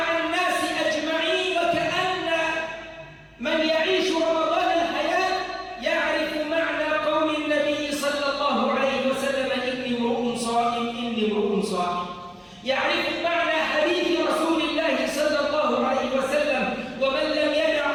الناس أجمعين. وكأن من يعيش رمضان الحياة يعرف معنى قول النبي صلى الله عليه وسلم: إني امرؤ صائم، إني امرؤ صائم. يعرف معنى حديث رسول الله صلى الله عليه وسلم: ومن لم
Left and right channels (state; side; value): identical; both; correlation 1.00